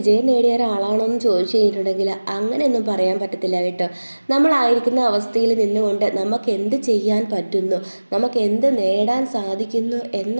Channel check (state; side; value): inverted; both; correlation -1.00